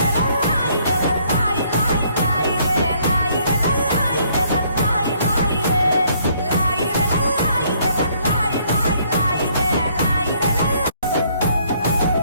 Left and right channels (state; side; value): inverted; both; correlation -0.65